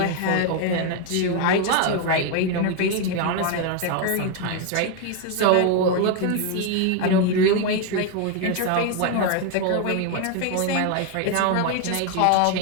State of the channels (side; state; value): both; different; correlation 0.01